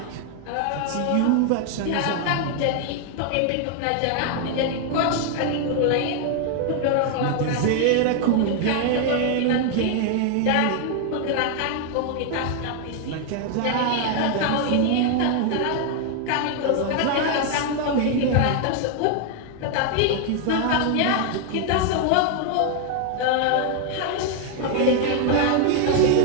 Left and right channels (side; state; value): both; different; correlation 0.00